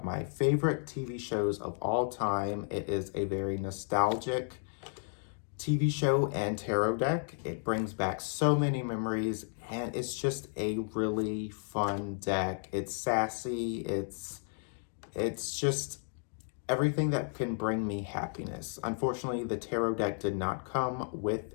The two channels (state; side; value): silent; right; 56 dB below the other